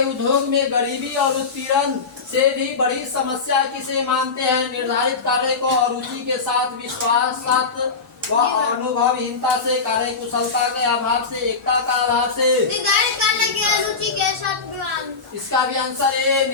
उद्योग में गरीबी और उत्पीड़न से भी बड़ी समस्या किसे मानते हैं? निर्धारित कार्य को अरुचि के साथ, विश्वास व अनुभवहीनता से, कार्य कुशलता के अभाव से, एकता का अभाव से। निर्धारित कार्य की अरुचि के साथ। इसका भी आंसर है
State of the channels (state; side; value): quieter; right; 4.7 dB